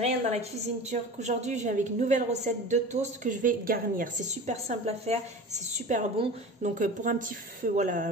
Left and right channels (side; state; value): both; normal; correlation 0.35